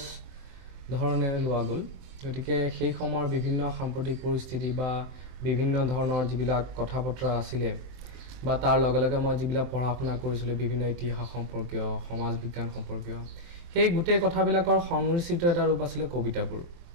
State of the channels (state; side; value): late; left; 23 ms